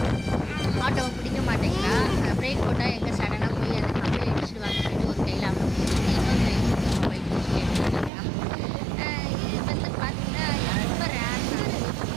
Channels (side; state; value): left; drops out; at 8.1 s